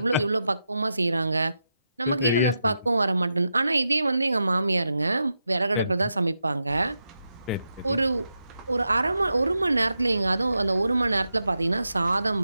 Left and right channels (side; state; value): both; inverted; correlation -0.87